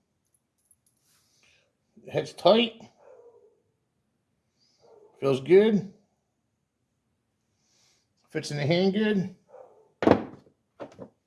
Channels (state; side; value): identical; both; correlation 1.00